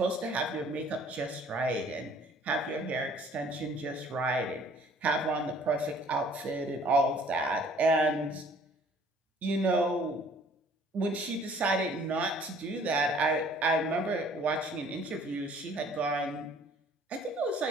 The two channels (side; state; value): both; normal; correlation 0.56